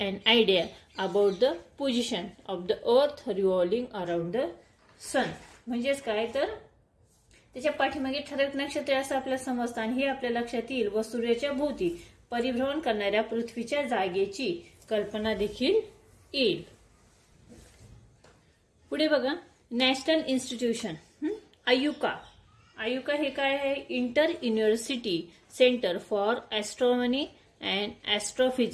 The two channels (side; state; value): both; identical; correlation 1.00